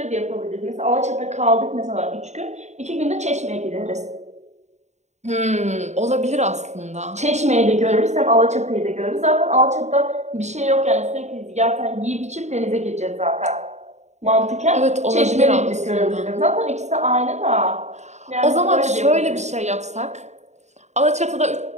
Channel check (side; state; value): left; late; 0.33 ms